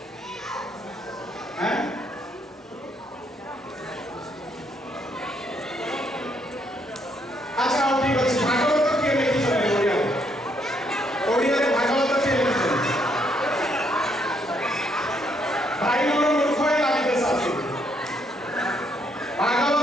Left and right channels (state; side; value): normal; both; correlation 0.72